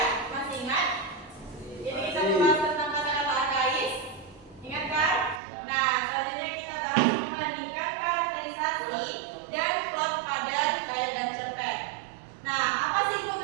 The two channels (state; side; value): drops out; left; at 5.4 s